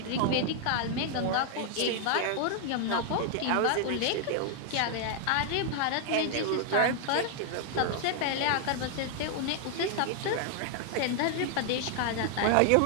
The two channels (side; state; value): both; different; correlation 0.00